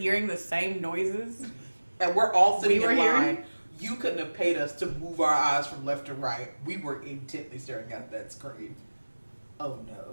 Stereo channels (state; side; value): inverted; both; correlation -1.00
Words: the same noises. And we're all sitting in line. You couldn't have paid us to move our eyes from left to right. We were intently staring at that screen. Oh